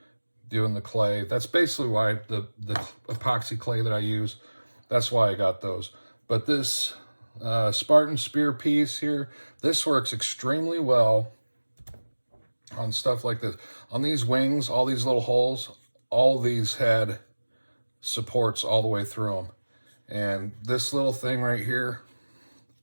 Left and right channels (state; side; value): inverted; both; correlation -1.00